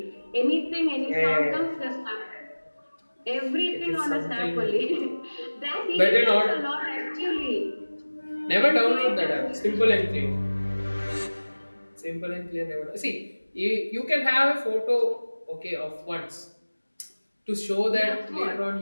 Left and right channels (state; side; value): inverted; both; correlation -1.00